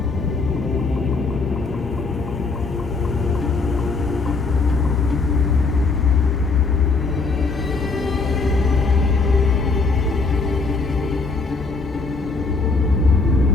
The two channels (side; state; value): right; quieter; 4.0 dB